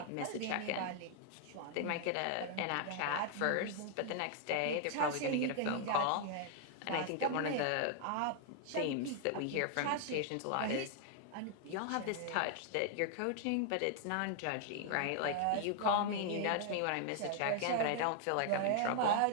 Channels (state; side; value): different; both; correlation 0.00